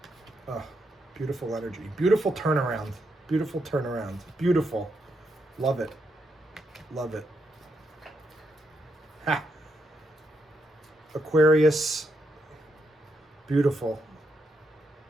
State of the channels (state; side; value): normal; both; correlation 0.81